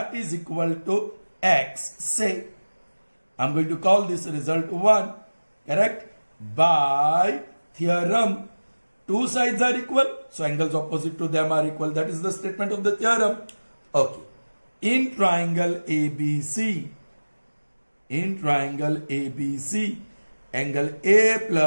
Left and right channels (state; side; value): inverted; both; correlation -1.00